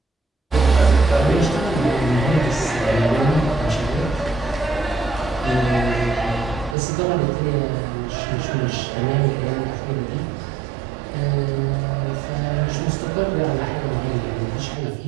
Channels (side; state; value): left; drops out; at 6.8 s